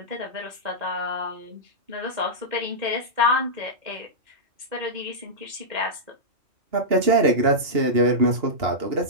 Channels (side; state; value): left; late; 2.8 ms